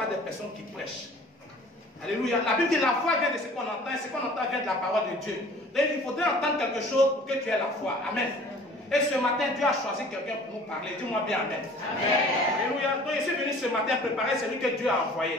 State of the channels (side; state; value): both; normal; correlation 0.49